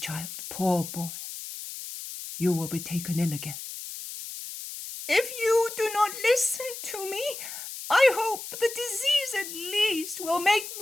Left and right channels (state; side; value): noise; left; hiss, 10 dB below the sound